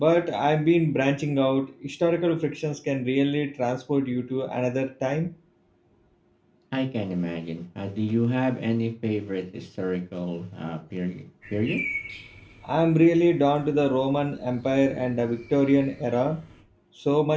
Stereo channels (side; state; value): both; identical; correlation 1.00